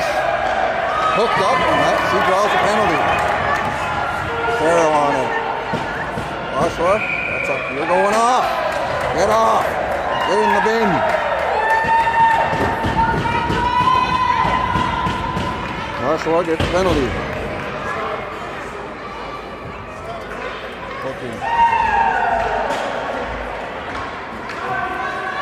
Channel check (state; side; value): identical; both; correlation 1.00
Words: hooked up, and that, she draws a penalty. Farrell on it. Oshawa, that's up. You're going off. Get off. Get in the bin. Oshawa gets the penalty. Okay.